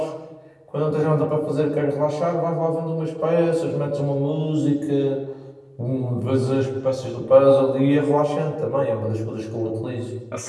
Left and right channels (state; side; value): identical; both; correlation 1.00